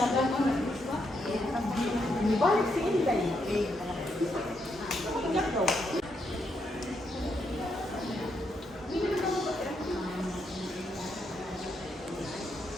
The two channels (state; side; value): normal; both; correlation 0.79